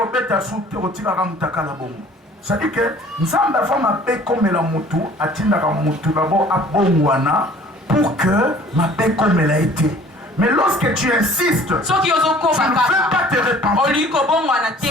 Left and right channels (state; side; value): normal; both; correlation 0.51